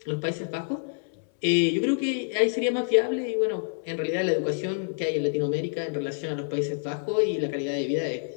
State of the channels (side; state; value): right; silent; 60 dB below the other